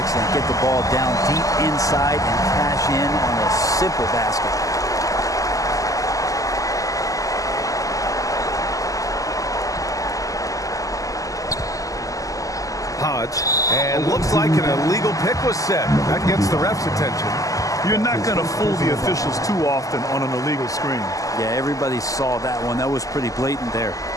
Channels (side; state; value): right; late; 0.17 ms